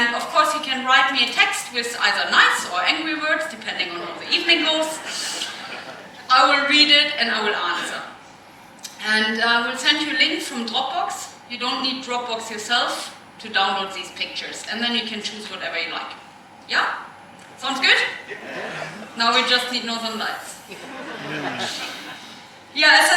of course you can write me a text with either nice or angry words, depending on how the evening goes. I will read it and I will answer. And I will send you a link from Dropbox. You don't need Dropbox yourself to download these pictures. And then you can choose whatever you like. Yeah? Sounds good? Now we just need Northern Lights. Yeah, as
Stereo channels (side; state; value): both; identical; correlation 1.00